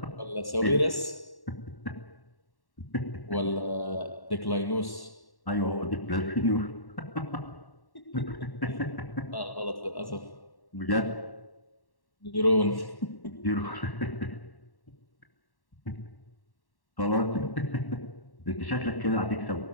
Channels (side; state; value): right; late; 1.1 ms